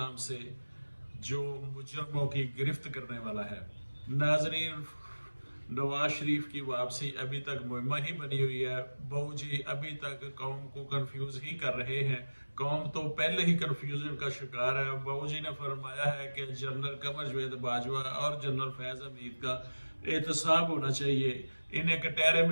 سے جو مجرموں کی گرفت کرنے والا ہے۔ ناظرین، نواز شریف کی واپسی ابھی تک مہمہ ہی بنی ہوئی ہے۔ بہو جی ابھی تک قوم کو کنفیوز ہی کر رہے ہیں۔ قوم تو پہلے ہی کنفیوژن کا شکار ہے۔ بہو جی نے فرمایا ہے کہ جنرل قمر جاوید باجوہ اور جنرل فیض حمید کا احتساب ہونا چاہیے، انہیں کٹہرے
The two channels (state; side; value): inverted; both; correlation -1.00